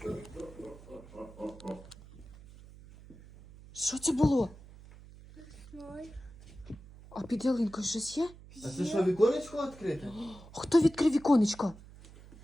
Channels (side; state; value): right; noise; hum, 19 dB below the sound